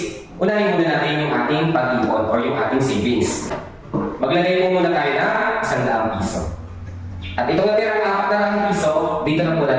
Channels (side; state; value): both; identical; correlation 1.00